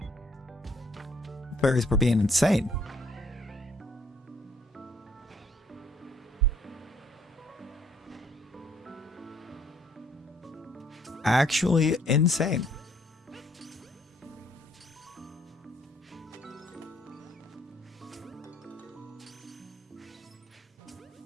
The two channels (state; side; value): normal; both; correlation 0.64